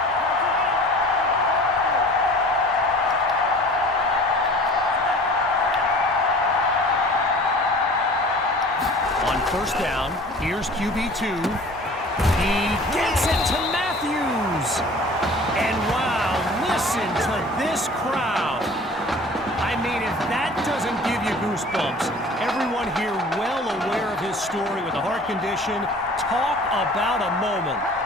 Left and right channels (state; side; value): normal; both; correlation 0.45